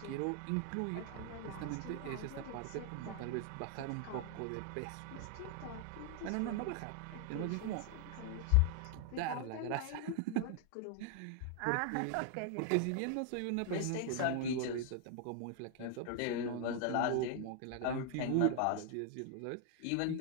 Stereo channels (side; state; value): both; different; correlation 0.00